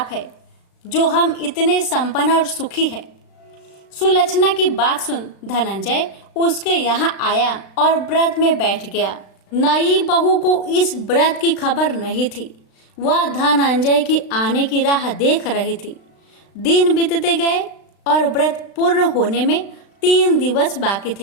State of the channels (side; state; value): right; late; 36 ms